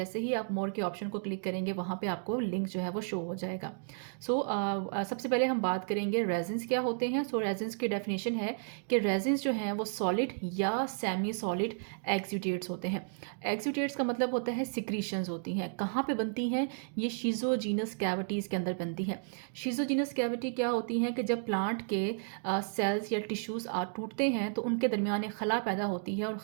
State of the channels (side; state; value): left; silent; digital silence